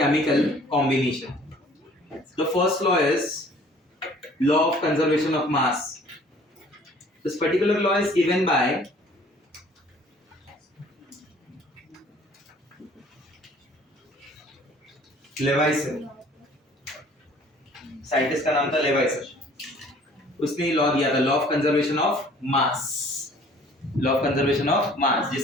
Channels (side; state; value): both; normal; correlation 0.54